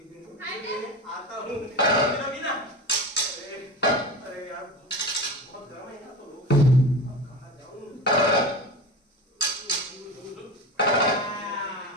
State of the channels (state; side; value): normal; both; correlation 0.28